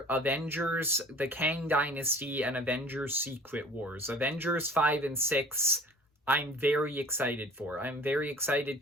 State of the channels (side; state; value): both; normal; correlation 0.46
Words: Avengers, the Kang Dynasty, and Avengers Secret Wars. Avengers 5 and 6, I'm very excited for. I'm very excited